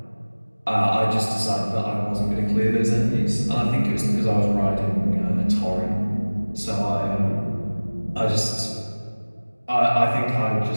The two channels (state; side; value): inverted; both; correlation -1.00